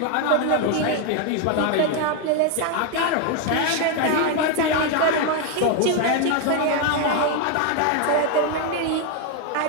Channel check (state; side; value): different; both; correlation 0.01